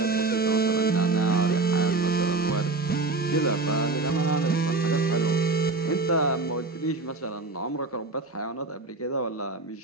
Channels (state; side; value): quieter; left; 3.5 dB